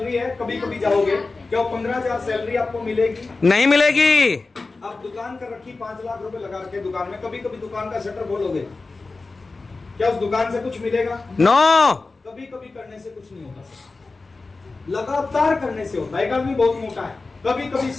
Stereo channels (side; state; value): right; quieter; 3.7 dB